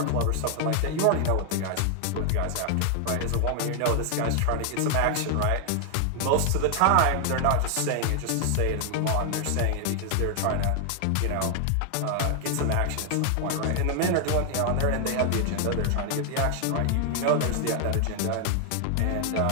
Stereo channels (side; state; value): both; different; correlation 0.00